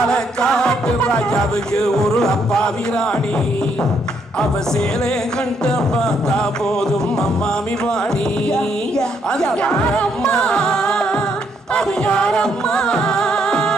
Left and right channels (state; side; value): normal; both; correlation 0.72